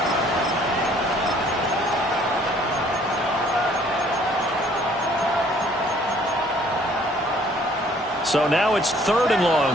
So now it's 3rd and long,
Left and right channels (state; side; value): normal; both; correlation 0.59